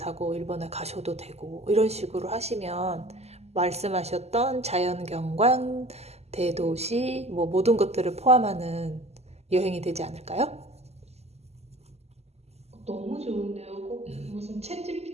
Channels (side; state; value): left; late; 0.30 ms